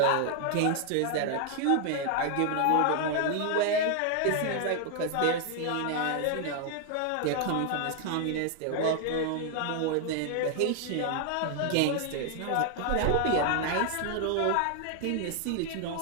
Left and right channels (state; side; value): different; both; correlation 0.00